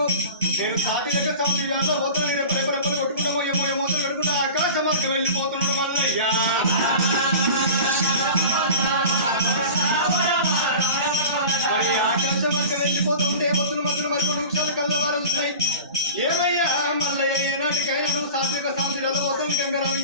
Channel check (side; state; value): both; inverted; correlation -0.35